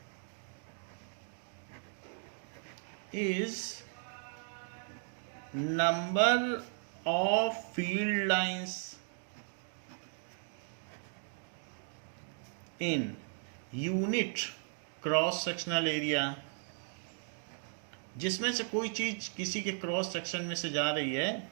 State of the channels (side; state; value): left; silent; 53 dB below the other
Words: Is number of field lines in unit cross sectional area, जिसमें से कोई चीज किसी के क्रॉस सेक्शन में से जा रही है,